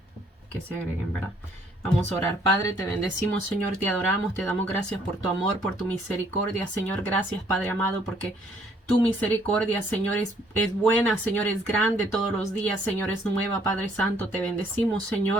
se agreguen, ¿verdad? Vamos a orar. Padre, te bendecimos, Señor, te adoramos, te damos gracias por tu amor, por tu misericordia, Señor. Gracias, Padre amado, porque tu misericordia, Señor, es buena, Señor, es grande todos los días, Señor, es nueva, Padre Santo. Te bendecimos,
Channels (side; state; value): both; normal; correlation 0.64